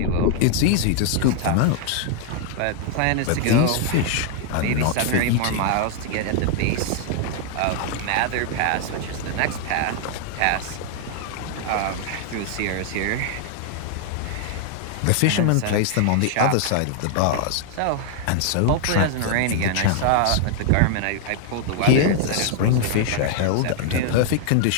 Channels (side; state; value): both; different; correlation 0.00